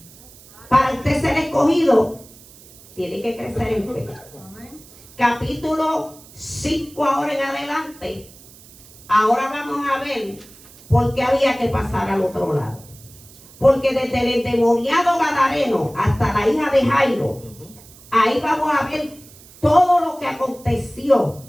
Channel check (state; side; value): noise; right; hiss, 22 dB below the sound